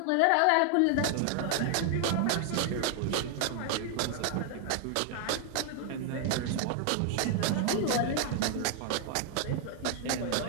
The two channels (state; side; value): different; both; correlation 0.00